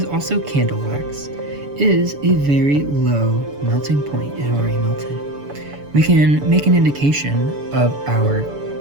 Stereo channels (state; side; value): late; left; 7.0 ms